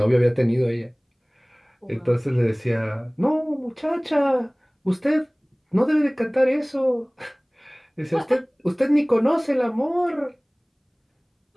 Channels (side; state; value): both; identical; correlation 1.00